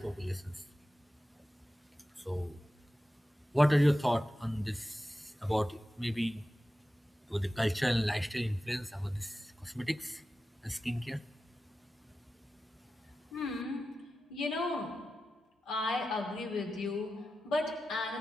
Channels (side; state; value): both; normal; correlation 0.93